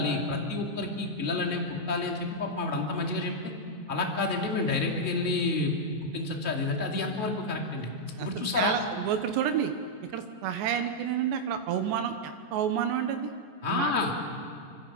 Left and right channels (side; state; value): left; late; 14 ms